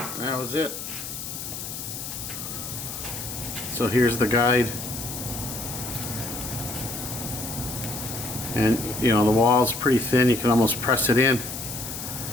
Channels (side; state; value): left; noise; hiss, 7 dB below the sound